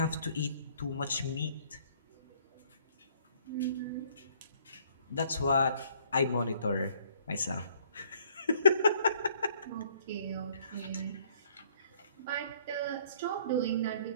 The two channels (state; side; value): inverted; both; correlation -0.62